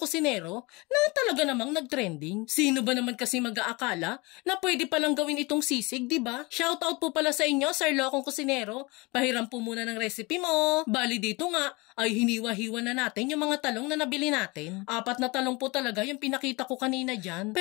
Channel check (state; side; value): quieter; right; 25.5 dB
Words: na talaga namang nag-trending. Sino ba naman kasi mag-aakala na pwede palang gawin itong sisig, diba? Shoutout po pala sa inyo, Sir Lokong Kusinero. Pahiram po muna ng recipe mo. Bali dito nga ay hiniwa-hiwa na natin yung mga talong na nabili natin. 4 na talong po talaga yung pinakita ko kanina dyan.